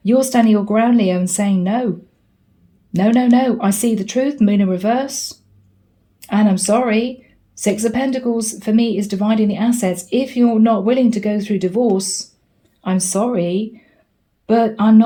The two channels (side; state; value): both; identical; correlation 1.00